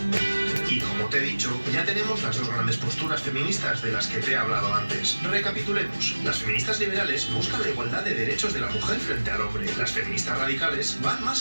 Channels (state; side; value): inverted; both; correlation -1.00